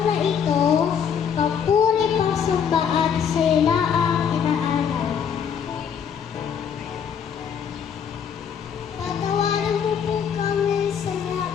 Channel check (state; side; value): quieter; right; 7.6 dB